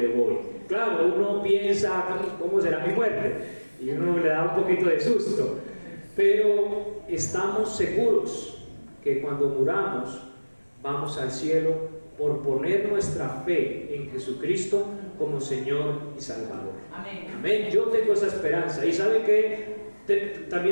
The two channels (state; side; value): inverted; both; correlation -1.00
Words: voy. Claro, uno piensa, ¿cómo será mi muerte? Y uno le da un poquito de susto, pero estamos seguros que cuando muramos vamos al cielo por poner nuestra fe en Jesucristo como Señor y Salvador. Amén. Amén. Yo tengo esa esperanza. Y sabe que